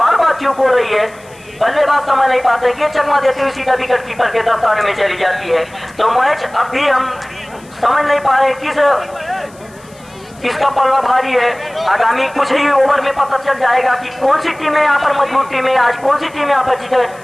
बार चूक हो रही है, बल्लेबाज समझ नहीं पाते कि चकमा देते हुए सीधा विकेट कीपर के दस्ताने में चली जाती है। तो मैच अब भी हम समझ नहीं पा रहे किसका पल्ला भारी है। आगामी कुछ ही ओवर में पता चल जाएगा कि कौन सी टीमें यहाँ पर मजबूत टीमें, आज कौन सी टीमें यहाँ पर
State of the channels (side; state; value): left; noise; hiss, 26 dB below the sound